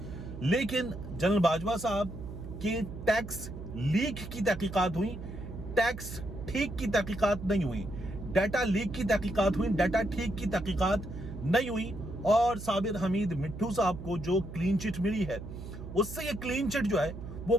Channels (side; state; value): right; noise; hum, 10 dB below the sound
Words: لیکن جنرل باجوہ صاحب کی ٹیکس لیک کی تحقیقات ہوئی، ٹیکس ٹھیک کی تحقیقات نہیں ہوئی، ڈیٹا لیک کی تحقیقات ہوئی، ڈیٹا ٹھیک کی تحقیقات نہیں ہوئی. اور صابر حمید مٹھو صاحب کو جو کلین چٹ ملی ہے، اس سے یہ کلین چٹ جو ہے وہ